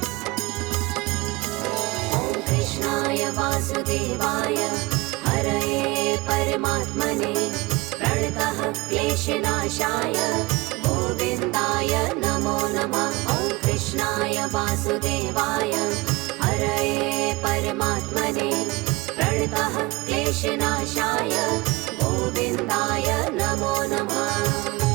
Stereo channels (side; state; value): left; quieter; 22.3 dB